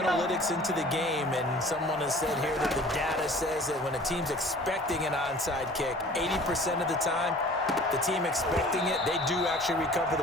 into the game, and someone has said here that the data says that when a team's expecting an onside kick, 80% of the time, the team expecting it, they do actually recover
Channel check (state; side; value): normal; both; correlation 0.47